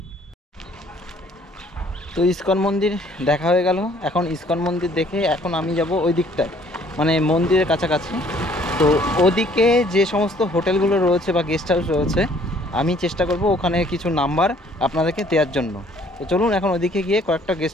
তো ইসকন মন্দির দেখা হয়ে গেল। এখন ইসকন মন্দির দেখে এখন আমি যাব ওই দিকটায়, মানে মন্দিরের কাছাকাছি। তো ওদিকে যে সমস্ত হোটেলগুলো রয়েছে বা গেস্ট হাউস রয়েছে, আমি চেষ্টা করব ওখানে কিছু নাম্বার আপনাদেরকে দেওয়ার জন্য। তো চলুন এখন ওদিকে গিয়ে কয়েকটা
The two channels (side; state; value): both; normal; correlation 0.59